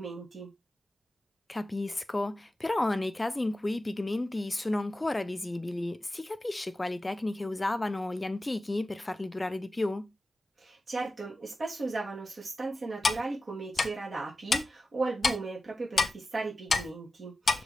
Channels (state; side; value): normal; both; correlation 0.94